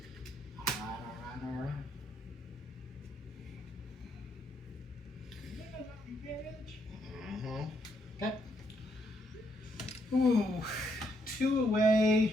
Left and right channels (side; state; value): both; normal; correlation 0.74